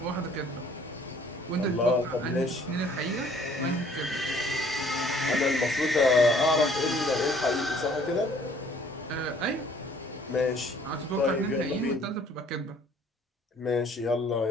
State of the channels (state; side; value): normal; both; correlation 0.58